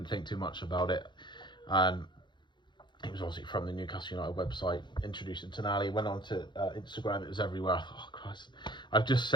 think too much about it. And it was obviously from the Newcastle United website, introducing Tonali. Went on to Instagram, it was everywhere. I thought, oh Christ. I've just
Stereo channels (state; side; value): late; right; 0.22 ms